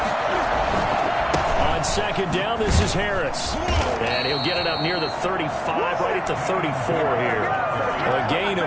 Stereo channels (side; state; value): both; identical; correlation 1.00